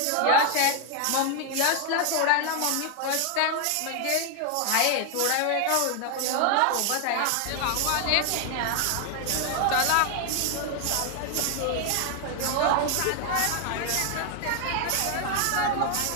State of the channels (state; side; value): different; both; correlation 0.00